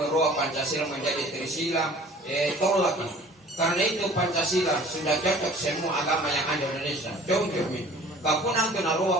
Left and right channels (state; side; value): normal; both; correlation 0.48